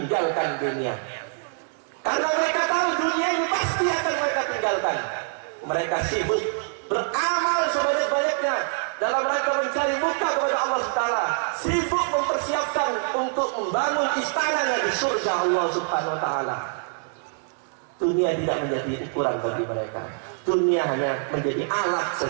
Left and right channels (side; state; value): left; silent; 62 dB below the other